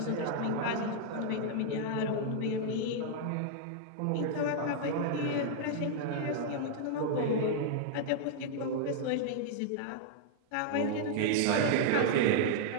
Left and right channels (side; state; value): both; different; correlation -0.01